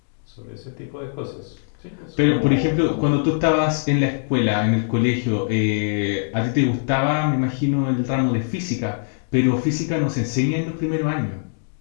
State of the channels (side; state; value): right; silent; digital silence